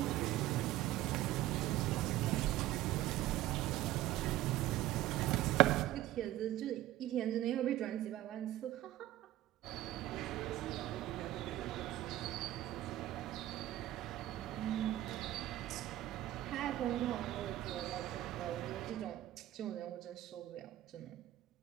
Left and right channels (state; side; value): quieter; left; 14.6 dB